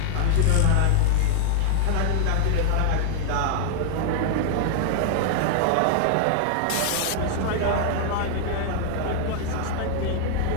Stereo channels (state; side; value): different; both; correlation -0.01